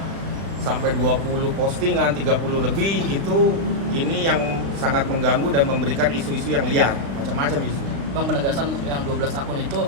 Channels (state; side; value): late; left; 35 ms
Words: sampai 20 postingan, 30 lebih, ini yang sangat mengganggu dan memberikan isu-isu yang liar, macam-macam isu. Bang, penegasan untuk yang 12 akun itu